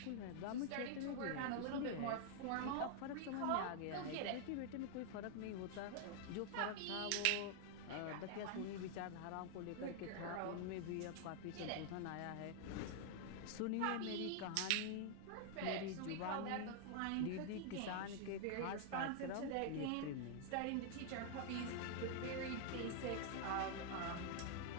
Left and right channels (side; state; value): both; different; correlation 0.00